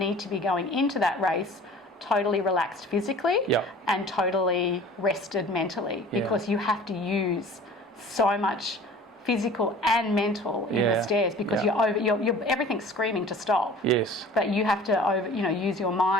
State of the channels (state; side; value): normal; both; correlation 0.44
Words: to be going into that race totally relaxed physically and totally rested mentally, because you have to use so much physical and mental in the stairs, because you're everything's screaming to stop. But you have to use your